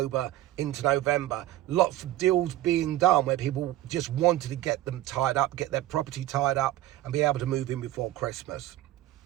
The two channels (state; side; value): quieter; left; 14.6 dB